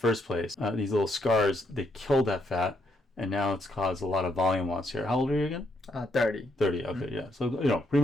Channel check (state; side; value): normal; both; correlation 0.75